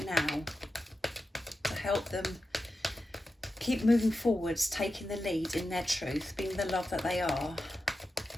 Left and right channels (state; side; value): normal; both; correlation 0.91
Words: now to help them keep moving forwards, taking the lead in their truth, being the love that they are,